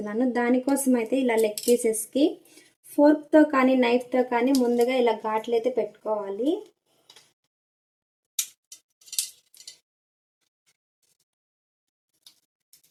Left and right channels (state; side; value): identical; both; correlation 1.00